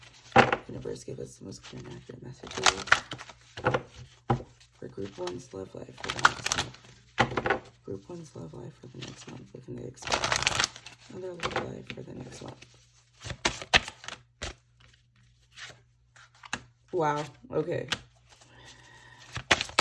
Universe, give us the most clear and accurate messages for Group 1's love life for the next month. Group 1's love life for the next month. What can they expect? Another love life for the next month. Wow, okay.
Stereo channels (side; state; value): both; identical; correlation 1.00